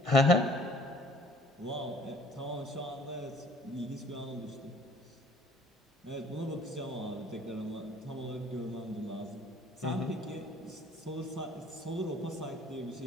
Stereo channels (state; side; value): normal; both; correlation 0.54